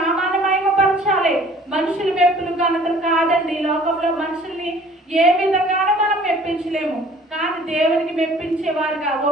మహిమపరచాలి. మనుషుల మెప్పులు ఘనతలు కాదండి. ఈ లోకంలో మనుషుల్ని ఏ విధంగానూ మనం మెప్పించలేము, కానీ దేవునికి మెప్పించేవారుగా,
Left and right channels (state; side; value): normal; both; correlation 0.52